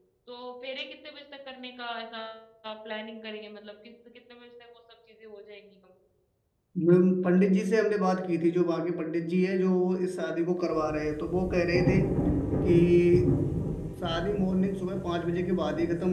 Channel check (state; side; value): identical; both; correlation 1.00